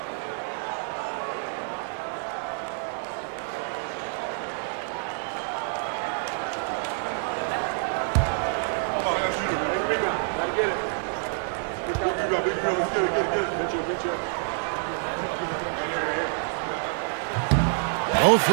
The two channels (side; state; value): left; silent; 60 dB below the other